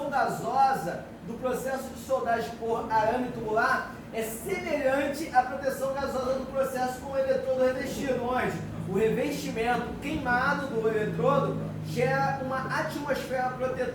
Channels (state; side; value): identical; both; correlation 1.00